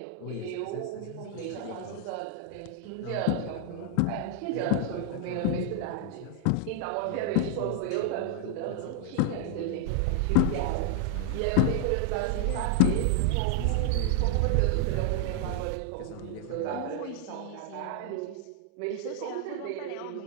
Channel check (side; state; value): both; different; correlation 0.00